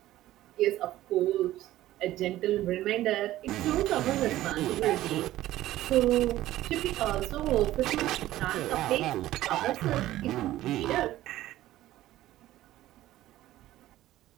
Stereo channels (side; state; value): left; quieter; 14.8 dB